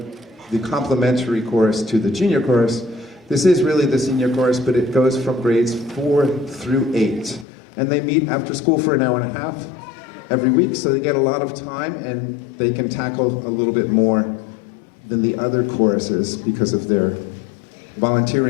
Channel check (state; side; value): drops out; right; at 7.5 s